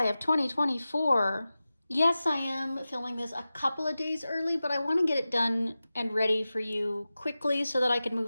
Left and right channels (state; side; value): inverted; both; correlation -0.95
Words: of 2024, yes, I am filming this a couple of days early, but I want to get it done and ready for you quickly so that I can